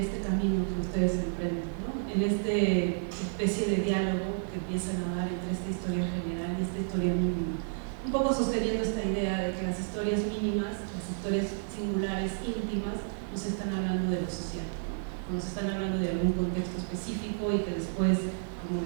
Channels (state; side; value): silent; left; digital silence